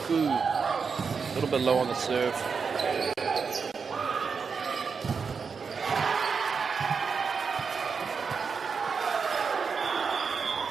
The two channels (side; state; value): left; quieter; 5.6 dB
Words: A little bit low on the serve.